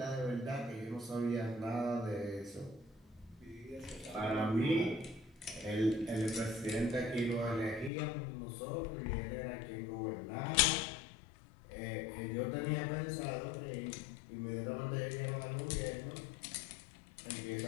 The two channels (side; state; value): right; drops out; at 7.9 s